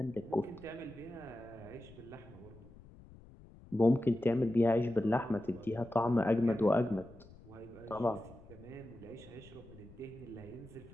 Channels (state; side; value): noise; left; rumble, 21 dB below the sound